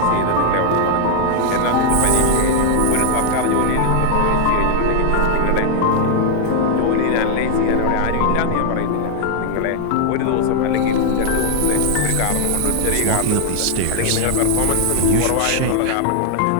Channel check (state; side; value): different; both; correlation 0.00